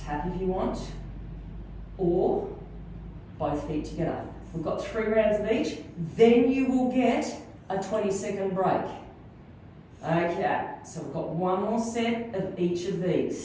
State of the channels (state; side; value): identical; both; correlation 1.00